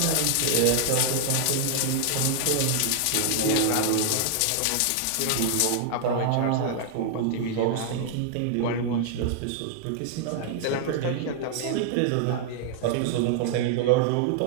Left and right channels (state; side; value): different; both; correlation 0.00